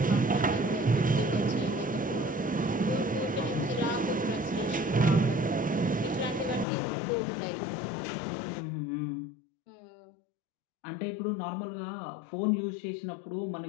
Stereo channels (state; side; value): drops out; right; at 6.7 s